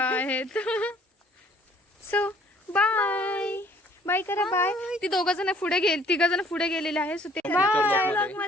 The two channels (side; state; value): both; normal; correlation 0.58